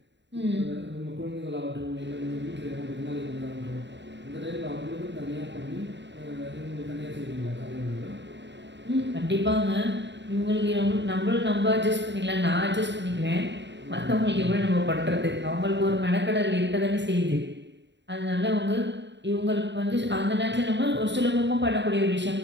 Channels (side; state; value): left; late; 0.52 ms